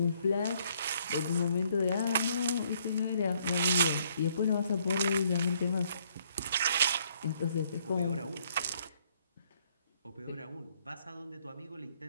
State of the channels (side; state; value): both; inverted; correlation -0.67